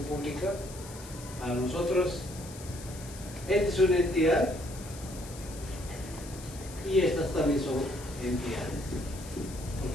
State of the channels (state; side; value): noise; left; hiss, 15 dB below the sound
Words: pública, a nosotros, esta es una entidad y estas también son entidades,